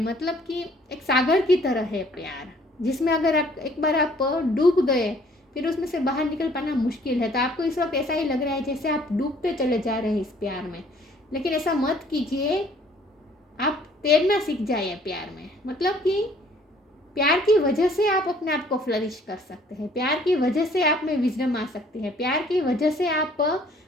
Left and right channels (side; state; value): both; normal; correlation 0.58